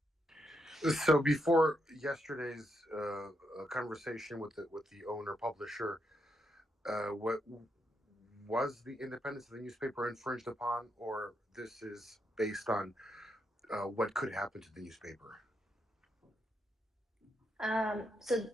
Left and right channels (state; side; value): normal; both; correlation 0.81